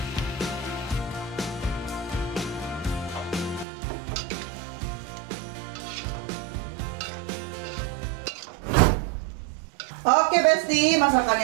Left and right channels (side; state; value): left; drops out; at 3.7 s